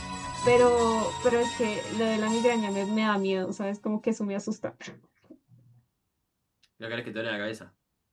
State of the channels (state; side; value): identical; both; correlation 1.00